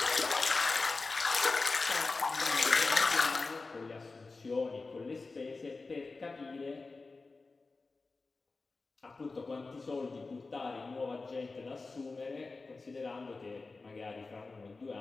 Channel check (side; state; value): right; quieter; 3.8 dB